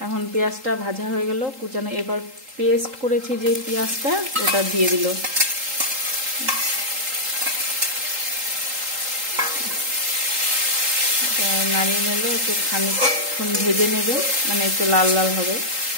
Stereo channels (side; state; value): left; late; 3.8 ms